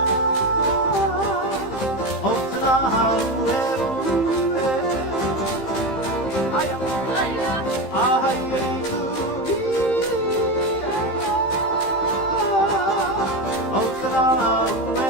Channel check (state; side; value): late; right; 15 ms